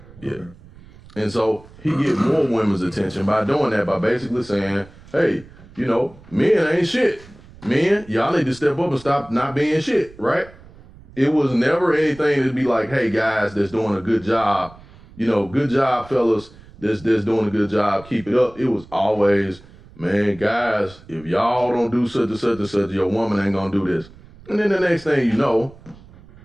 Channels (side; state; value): right; noise; rumble, 22 dB below the sound